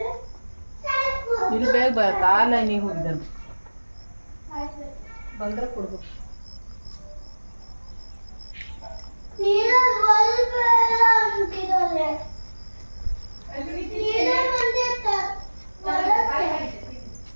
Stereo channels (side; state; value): both; inverted; correlation -1.00